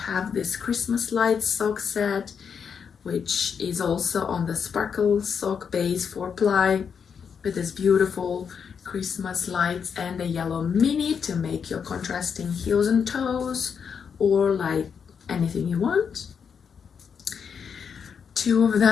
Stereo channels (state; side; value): quieter; right; 6.8 dB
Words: this Christmas lights sock set, which is also on the sparkle sock base 4-ply, with this beautiful Christmas lights and a yellow mini to make your contrasting heels and toes, or like anything you want. 2 of